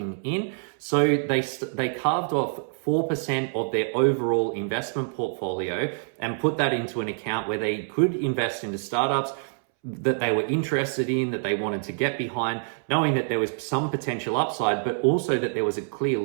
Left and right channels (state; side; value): silent; left; 61 dB below the other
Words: in. So they carved off 4% of their overall investment portfolio and put that into an account where they could invest into startups that they were interested in, that they wanted to get behind, knowing that there was some potential upside, but also that there was a clear